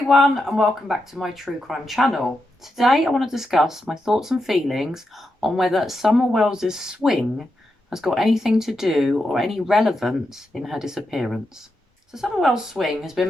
and welcome back to my true crime channel. Today I want to discuss my thoughts and feelings on whether Summer Wells's swing has got anything to do or any relevance in her disappearance. So Summer Well's swing has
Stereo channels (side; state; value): both; normal; correlation 0.86